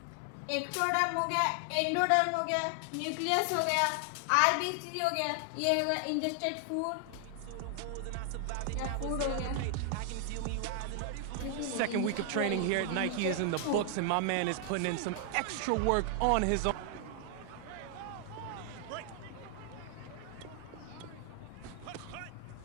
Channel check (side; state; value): both; different; correlation 0.00